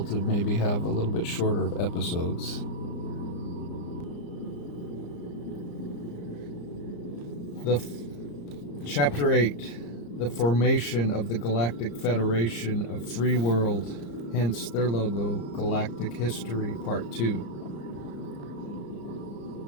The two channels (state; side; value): late; right; 34 ms